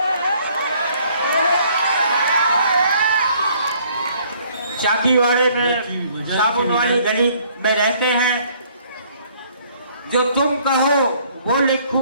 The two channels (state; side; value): inverted; both; correlation -0.61